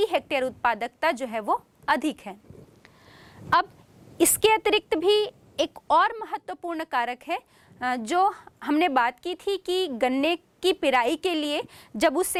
हेक्टेयर उत्पादकता जो है वो अधिक है। अब इसके अतिरिक्त भी एक और महत्वपूर्ण कारक है जो हमने बात की थी कि गन्ने की पिराई के लिए जब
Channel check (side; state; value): both; identical; correlation 1.00